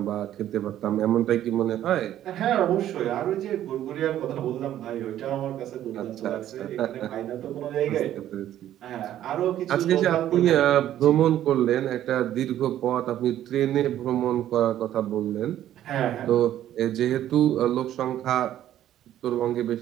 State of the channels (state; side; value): quieter; left; 12.0 dB